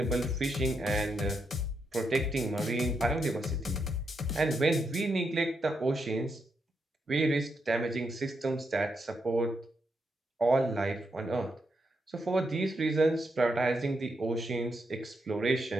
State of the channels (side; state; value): both; normal; correlation 0.82